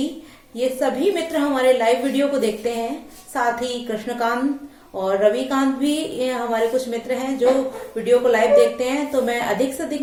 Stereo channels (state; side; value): identical; both; correlation 1.00